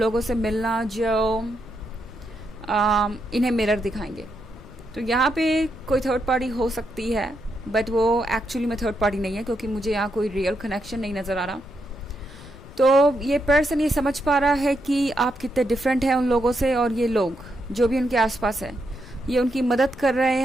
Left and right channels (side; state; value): left; noise; rumble, 18 dB below the sound